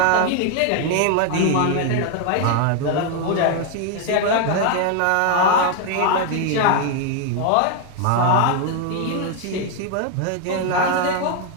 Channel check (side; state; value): both; different; correlation 0.00